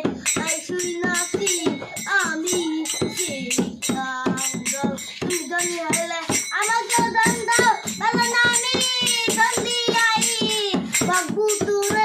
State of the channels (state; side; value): identical; both; correlation 1.00